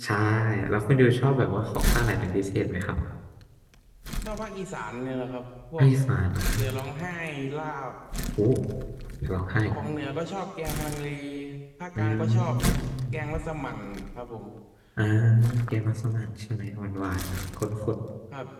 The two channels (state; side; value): identical; both; correlation 1.00